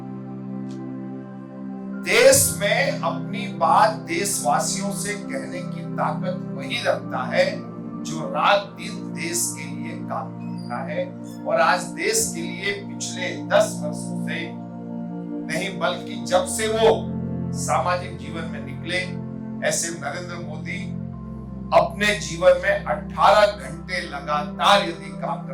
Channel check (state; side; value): identical; both; correlation 1.00